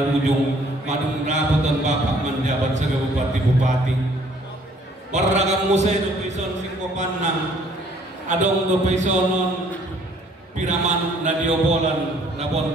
madung rapot ang bapak manjabat sa bupati warragam musay do pison singkopan na adong do pisonon piraman na diobolan na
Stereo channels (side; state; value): both; normal; correlation 0.60